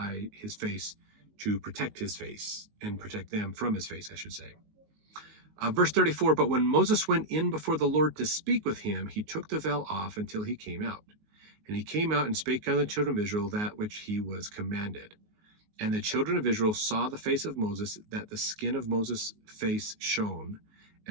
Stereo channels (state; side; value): late; left; 19 ms